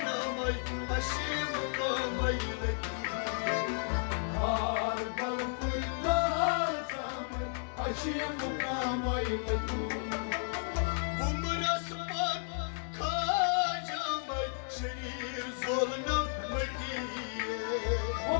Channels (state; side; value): silent; right; digital silence